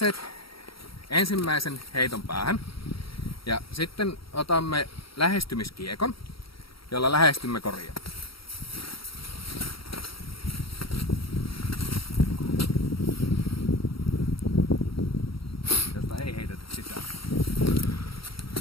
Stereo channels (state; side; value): late; right; 0.75 ms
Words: ensimmäisen heiton päähän. Ja sitten otamme lähestymiskiekon, jolla lähestymme koria. Josta ei heitetä sisään.